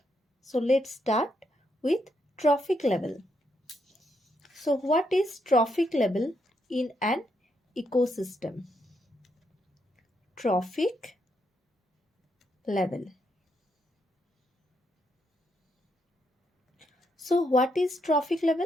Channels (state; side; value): normal; both; correlation 0.79